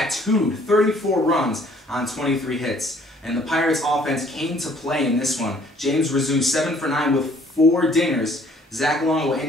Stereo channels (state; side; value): normal; both; correlation 0.59